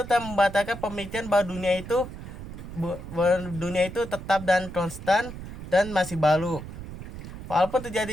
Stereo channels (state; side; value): noise; right; rumble, 11 dB below the sound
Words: telah membatalkan pemikiran bahwa dunia itu tetap dan konstan dan masih baru. Walaupun